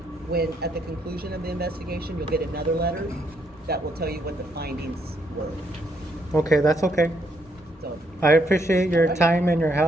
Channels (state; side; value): normal; both; correlation 0.73